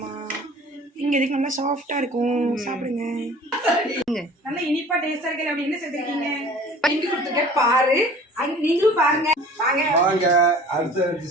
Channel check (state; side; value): normal; both; correlation 0.46